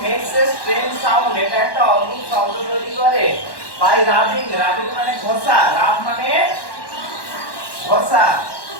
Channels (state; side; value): late; right; 1.1 ms